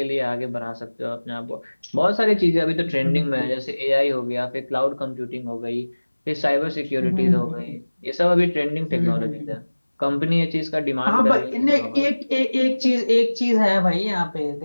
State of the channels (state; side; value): inverted; both; correlation -1.00